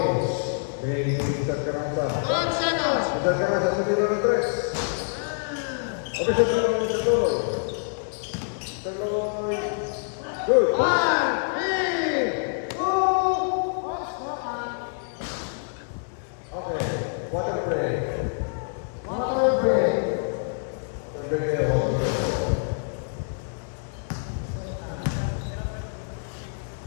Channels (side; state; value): right; silent; digital silence